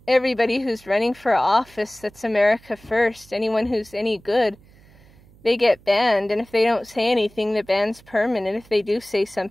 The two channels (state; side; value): noise; right; hum, 27 dB below the sound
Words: everybody who's running for office that's America First, anyone who's any good, they get banned. And if they don't say anything, the ban's permanent. If they do say